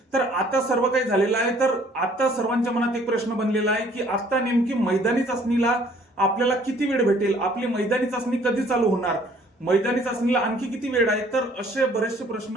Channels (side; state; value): both; normal; correlation 0.59